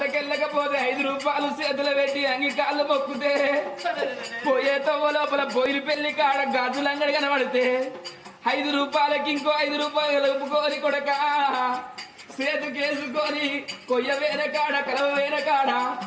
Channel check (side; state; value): both; identical; correlation 1.00